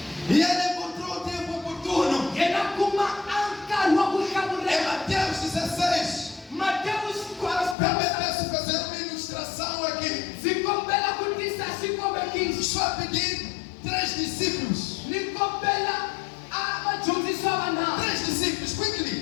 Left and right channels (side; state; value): right; drops out; at 7.8 s